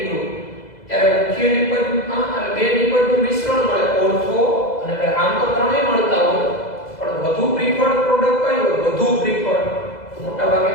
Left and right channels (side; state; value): right; late; 2.0 ms